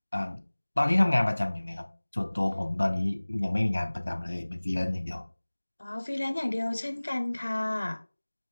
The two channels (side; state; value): both; inverted; correlation -1.00